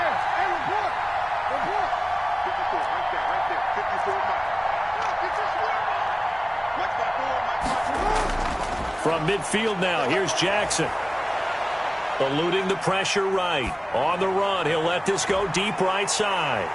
From midfield now, here's Jackson. Eluding the pressure right. On the run, he'll let this go deep right side.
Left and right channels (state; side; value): identical; both; correlation 1.00